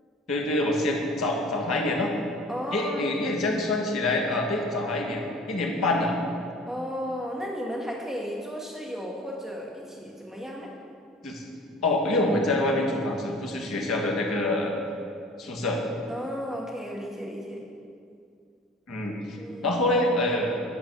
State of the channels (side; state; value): both; normal; correlation 0.43